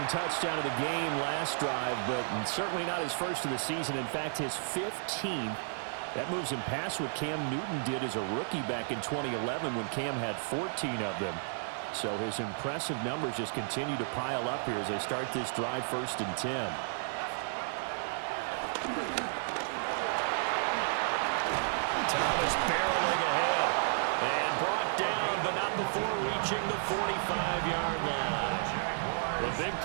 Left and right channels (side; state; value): left; silent; digital silence